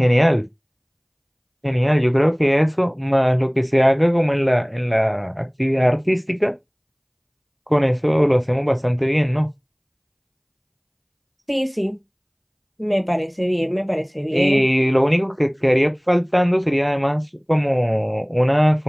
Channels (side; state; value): both; identical; correlation 1.00